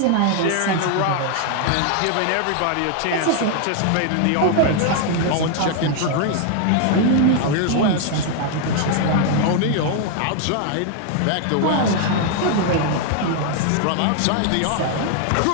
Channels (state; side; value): different; both; correlation 0.00